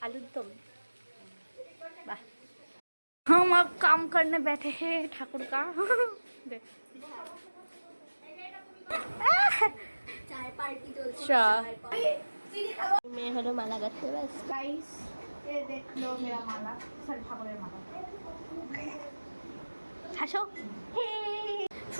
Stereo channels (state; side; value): inverted; both; correlation -1.00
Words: आलूर दम। वाह, हम अब काम करने बैठे हैं ठाकुर का। চায় পার্টি চলছে। मैं हलो माला गाते बस गाइस ये देख लो मेरा माला, सर ठाकुरेर माला। হাসো।